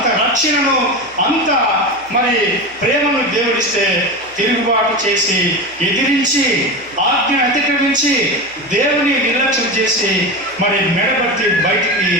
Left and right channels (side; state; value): right; noise; hum, 28 dB below the sound